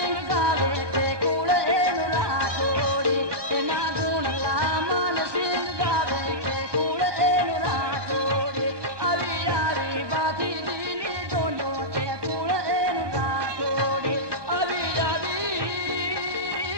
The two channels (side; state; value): left; late; 1.2 ms